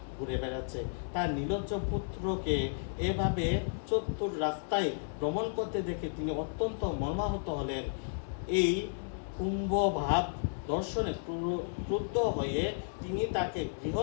ঘুরে বেড়াচ্ছে। তার নির্লজ্জ পুত্রকে এভাবে চতুর রাস্তায় ভ্রমণ করতে দেখে তিনি অত্যন্ত মর্মাহত হলেন। এই কুম্ভভাব দর্শনে ক্রুদ্ধ হয়ে তিনি তাকে গৃহ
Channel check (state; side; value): silent; right; digital silence